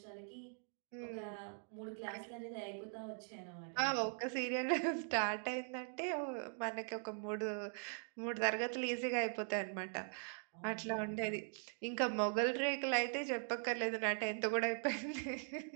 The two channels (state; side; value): silent; left; 50 dB below the other